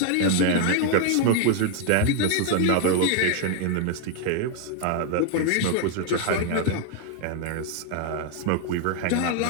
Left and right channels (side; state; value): both; different; correlation 0.00